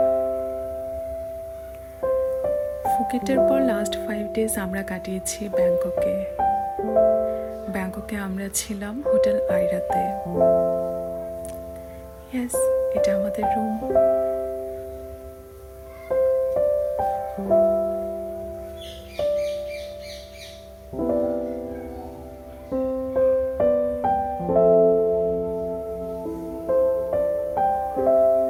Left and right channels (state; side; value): identical; both; correlation 1.00